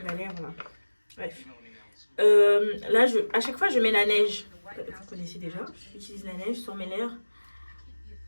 là. Bref. Là, à chaque fois, je mets la neige. Vous connaissez déjà. J'utilise la neige sur mes lèvres.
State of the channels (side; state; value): both; inverted; correlation -1.00